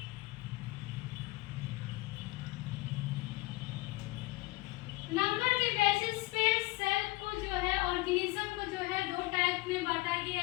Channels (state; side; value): quieter; right; 21.9 dB